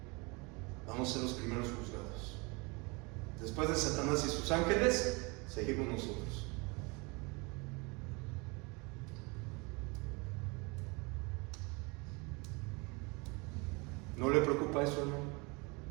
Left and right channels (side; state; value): left; quieter; 28.2 dB